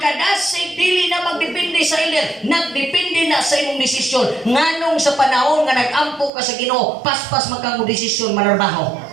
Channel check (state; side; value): drops out; left; at 6.3 s